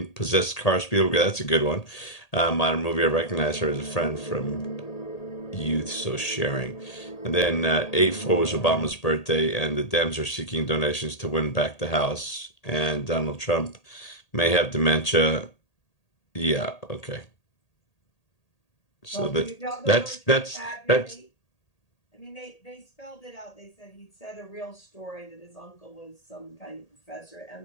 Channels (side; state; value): right; late; 1.8 ms